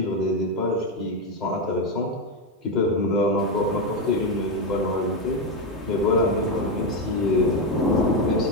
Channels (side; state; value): both; normal; correlation 0.08